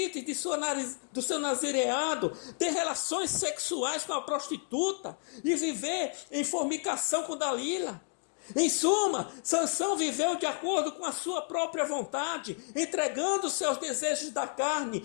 do seu nazireado, ter relações sexuais com a prostituta e viver em fornicação com Dalila. Em suma, Sansão viveu de acordo com a sua própria vontade, entregando seus desejos da carne,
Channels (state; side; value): silent; right; 57 dB below the other